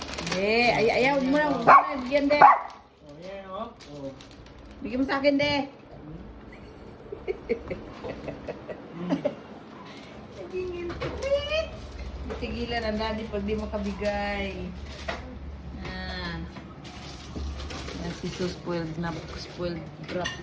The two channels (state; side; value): identical; both; correlation 1.00